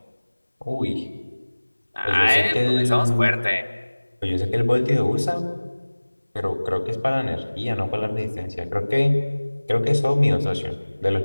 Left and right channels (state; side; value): inverted; both; correlation -1.00